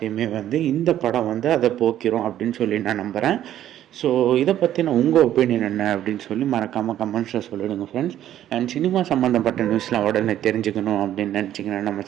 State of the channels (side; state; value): left; quieter; 11.8 dB